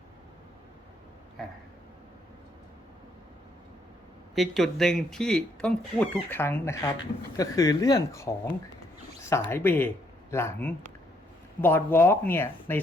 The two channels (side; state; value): both; normal; correlation 0.71